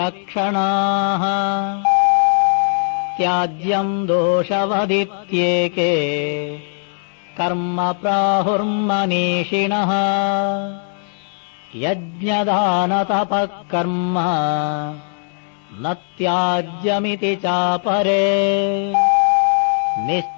त्याज्यं दोषवदित्येके कर्म प्राहुर्मनीषिणः। यज्ञदानतपः कर्म न त्याज्यमिति चापरे।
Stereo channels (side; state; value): right; silent; digital silence